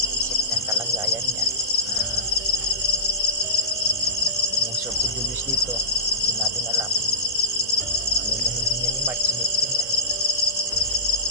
isip niyang kalagayan niya lumusob si Julius dito, hindi natin alam ano yung hindi niya ni Mark, sinipin niya.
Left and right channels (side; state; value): both; normal; correlation -0.12